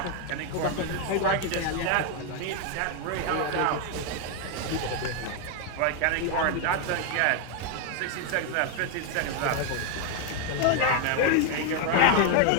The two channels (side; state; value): both; different; correlation 0.01